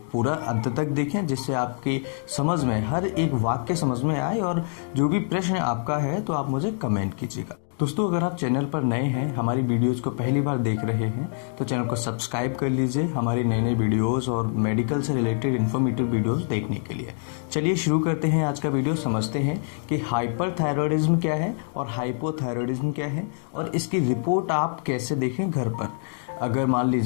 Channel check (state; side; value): silent; right; digital silence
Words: पूरा अंत तक देखें, जिससे आपकी समझ में हर एक वाक्य समझ में आए और जो भी प्रश्न आपका है तो आप मुझे कमेंट कीजिएगा। दोस्तों, अगर आप चैनल पर नए हैं, हमारी वीडियोस को पहली बार देख रहे हैं, तो चैनल को सब्सक्राइब कर लीजिए हमारी नई नई वीडियोस और मेडिकल से रिलेटेड इन्फॉर्मेटिव वीडियोस देखने के लिए। चलिए शुरू करते हैं आज का वीडियो। समझते हैं कि हाइपरथायरॉयडिज्म क्या है और हाइपोथायरॉयडिज्म क्या है और इसकी रिपोर्ट आप कैसे देखें घर पर। अगर मान